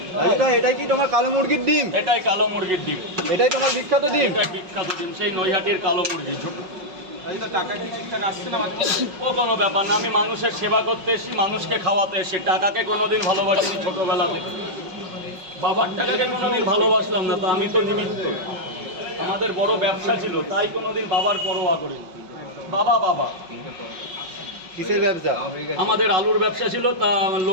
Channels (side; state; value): left; late; 5.4 ms